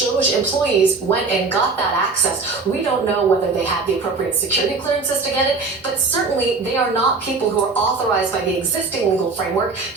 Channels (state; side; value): quieter; left; 4.2 dB